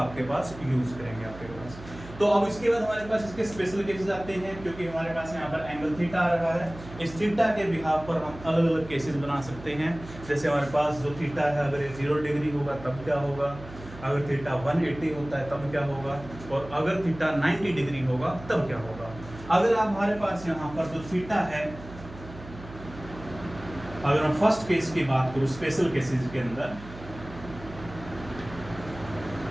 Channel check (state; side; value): noise; right; hum, 15 dB below the sound